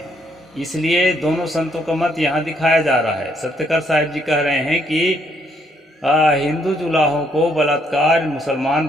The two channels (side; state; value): both; normal; correlation 0.71